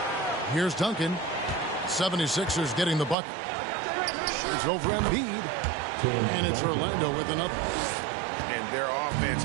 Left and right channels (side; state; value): left; drops out; at 3.2 s